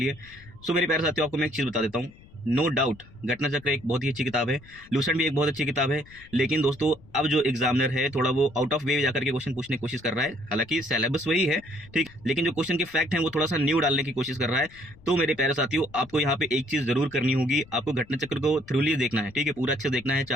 सो मेरे प्यारे साथियों, आपको मैं एक चीज़ बता देता हूँ, नो डाउट घटना चक्र एक बहुत ही अच्छी किताब है, लूसेंट भी एक बहुत अच्छी किताब है। लेकिन दोस्तों, अब जो एग्जामिनर है थोड़ा वो आउट ऑफ वे जाकर के क्वेश्चन पूछने की कोशिश कर रहा है। हालांकि सिलेबस वही है, ठीक, लेकिन जो क्वेश्चन के फैक्ट हैं वो थोड़ा सा न्यू डालने की कोशिश कर रहा है। तो मेरे प्यारे साथियों, आपको यहाँ पे एक चीज जरूर करनी होगी, आपको घटना चक्र को थ्रूली देखना है, ठीक है, पूरा अच्छे से देखना है,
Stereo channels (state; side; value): noise; left; rumble, 23 dB below the sound